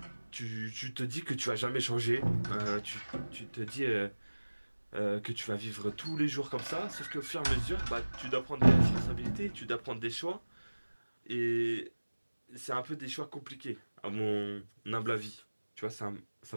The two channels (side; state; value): both; inverted; correlation -1.00